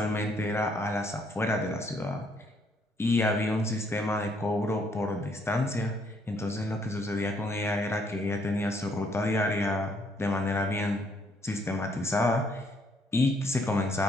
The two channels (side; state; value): both; normal; correlation 0.68